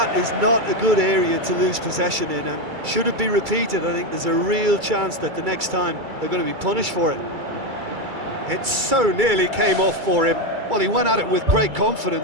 is not a good area to lose possession in, and should it be repeated, I think there's a real chance that the next time they're going to be punished for it. It so nearly came off for him. Well, he went at it with great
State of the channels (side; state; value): left; late; 2.3 ms